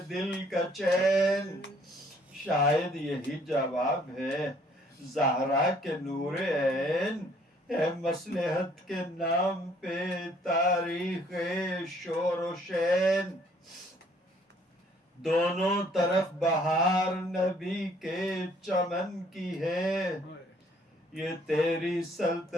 دل کا چین، شاید یہی جواب ہے زہرا کے نور عین، ہے مصلحت کے نام پہ تاریخ شور و شین، دونوں طرف بہار نبی کے چمن کی ہے، یہ تیری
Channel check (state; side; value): normal; both; correlation 0.62